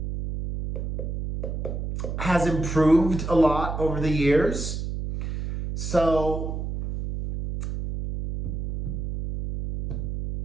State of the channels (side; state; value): right; noise; hum, 4 dB below the sound